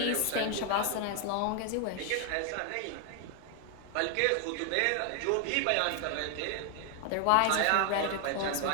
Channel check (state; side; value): different; both; correlation 0.00